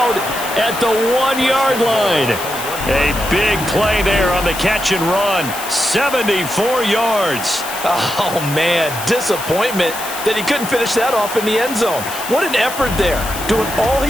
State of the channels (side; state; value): left; noise; hiss, 10 dB below the sound